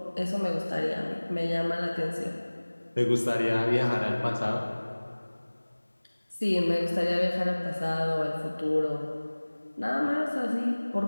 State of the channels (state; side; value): inverted; both; correlation -1.00